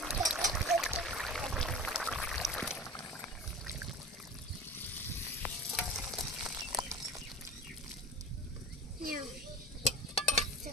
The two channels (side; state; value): both; normal; correlation 0.34